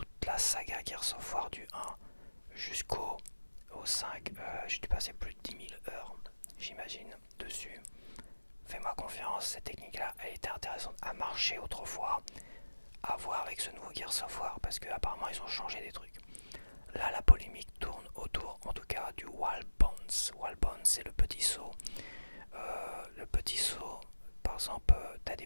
la saga Gears of War du 1 jusqu'au 5, j'ai dû passer plus de 10 000 heures, j'imagine, dessus. Fais-moi confiance, cette technique-là, elle était intéressante à marcher autrefois, à voir avec ce nouveau Gears of War, parce qu'apparemment ils ont changé des trucs. Là, la polémique tourne autour, en tout cas, du Wall Bounce. Wall Bounce, c'est le petit saut. Le petit saut, par exemple, t'as des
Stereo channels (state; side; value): inverted; both; correlation -1.00